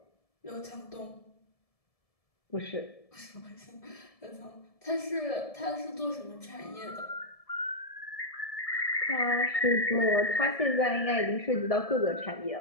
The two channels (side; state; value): right; late; 1.7 ms